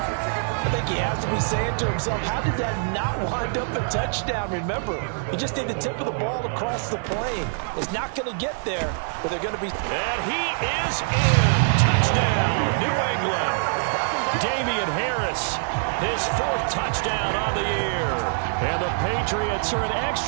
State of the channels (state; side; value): silent; left; 62 dB below the other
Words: I think he has to be saying to himself, how did that not wind up a touchdown? Remember, he just need the tip of the ball to cross the plane. It's not going to get there, but they're going to be... And he is in. Touchdown, New England. Damian Harris, his 4th touchdown on the year. And the Patriots are an